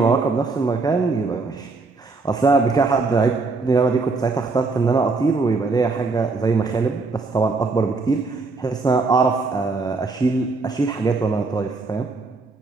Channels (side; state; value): left; quieter; 3.9 dB